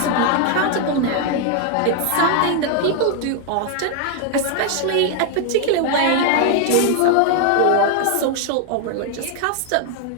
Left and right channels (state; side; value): different; both; correlation 0.00